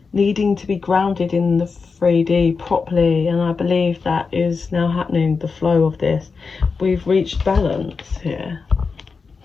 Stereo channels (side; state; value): right; quieter; 4.9 dB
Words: needing to be grounded in the 3D properly, and I believe that is now happening, the flow of this. We've reached balance here